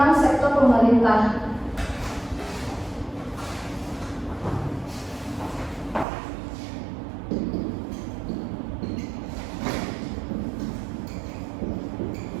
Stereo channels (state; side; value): drops out; left; at 6.1 s